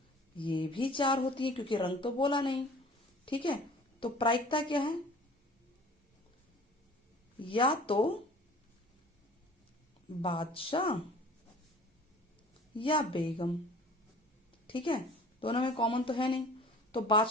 ये भी 4 होती है, क्योंकि रंग तो बोला नहीं, ठीक है। तो प्रायिकता क्या है? या तो बादशाह या बेगम, ठीक है। दोनों में कॉमन तो है नहीं, तो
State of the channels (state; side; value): normal; both; correlation 0.47